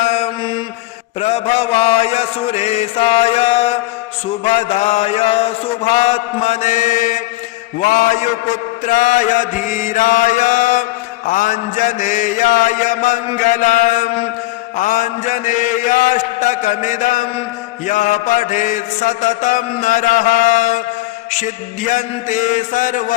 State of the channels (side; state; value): right; quieter; 18.5 dB